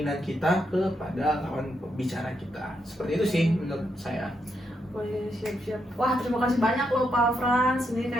kita kepada lawan bicara kita. Seperti itu sih menurut saya. Oh iya, siap. Wah, terima kasih banyak loh Pak Frans. Ini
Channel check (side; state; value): both; normal; correlation 0.81